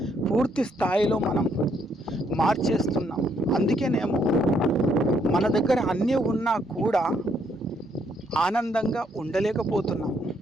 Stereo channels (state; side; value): normal; both; correlation 0.71